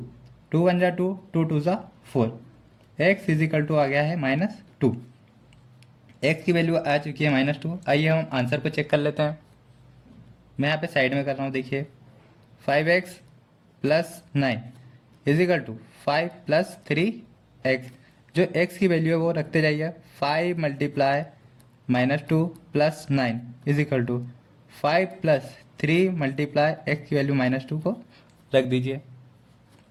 2 1 जा 2, 2 2 जा 4। x इजिकल टू आ गया है -2। x की वैल्यू आ चुकी है -2। आइए हम आंसर को चेक कर लेते हैं। मैं यहाँ पे साइड में कर रहा हूँ। देखिए 5x plus 9 is equal to 5 plus 3x। जो x की वैल्यू है वो रखते जाइए। 5 multiply -2 plus 9 is equal to 5 plus 3 multiply x की वैल्यू -2 को रख दीजिए।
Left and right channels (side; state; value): both; identical; correlation 1.00